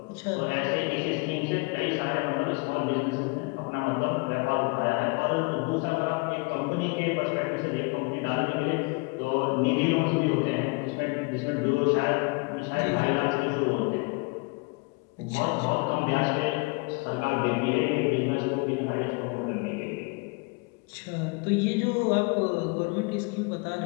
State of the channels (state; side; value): quieter; right; 29.2 dB